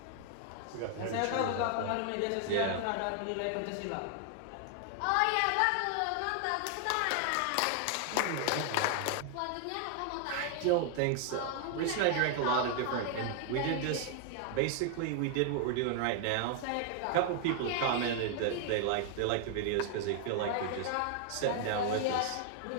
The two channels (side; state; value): both; different; correlation 0.00